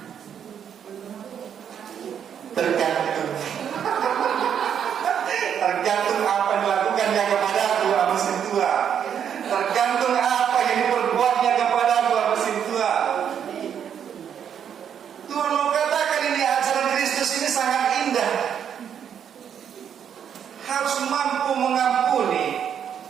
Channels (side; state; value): left; quieter; 8.5 dB